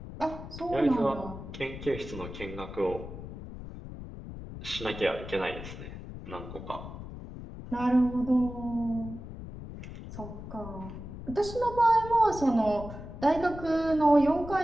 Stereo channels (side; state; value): left; noise; rumble, 11 dB below the sound